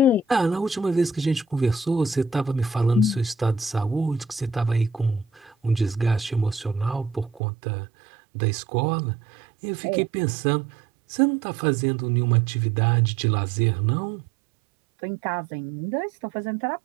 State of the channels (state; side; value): drops out; left; at 7.4 s